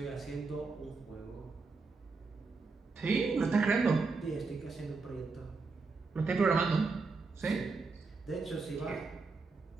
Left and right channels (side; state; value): left; quieter; 4.2 dB